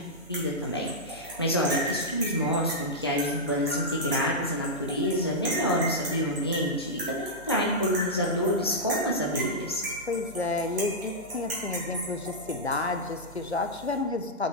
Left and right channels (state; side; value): normal; both; correlation -0.07